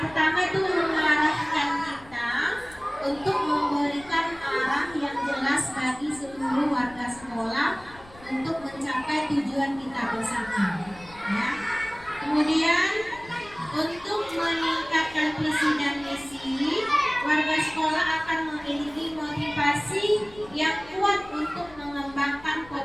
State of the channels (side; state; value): left; noise; rumble, 22 dB below the sound